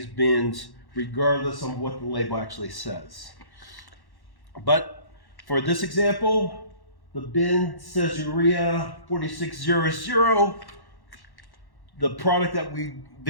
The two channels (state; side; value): late; right; 1.1 ms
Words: bins, regardless of what the label actually says. But for this example, the bin says urea 4600. The product that we